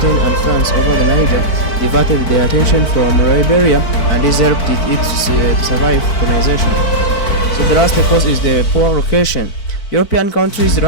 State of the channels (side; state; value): right; late; 4.5 ms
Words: and France over the Niger, diverted their attention from Liberia, and this helped it to survive colonization. So the last cause is the poor location. European countries